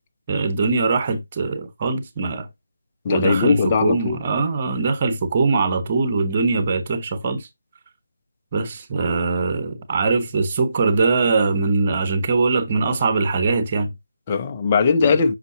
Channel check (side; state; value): both; inverted; correlation -0.77